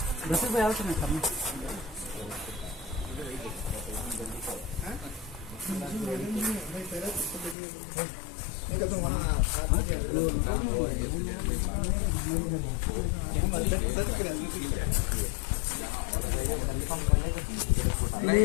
भाई आओ तो मैं करना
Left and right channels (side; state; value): right; drops out; at 7.6 s